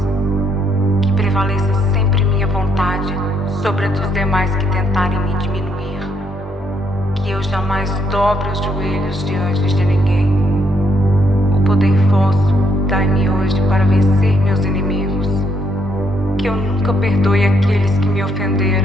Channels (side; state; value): both; normal; correlation 0.73